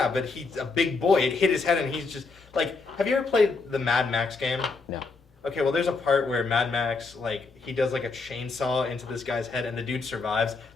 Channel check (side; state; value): right; quieter; 4.1 dB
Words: but he's a big boy. It hit his head, and he's just like. Have you ever played the Mad Max game? No. Okay, well, there's a part where Mad Max, like, he does like a chainsaw into this guy's head, and the dude survives.